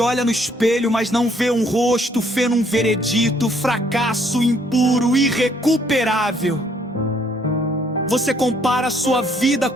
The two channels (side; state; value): both; normal; correlation 0.66